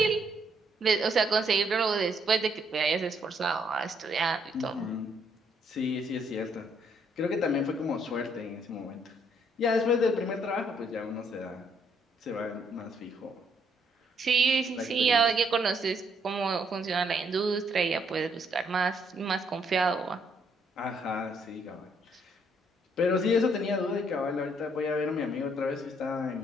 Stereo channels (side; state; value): both; normal; correlation 0.70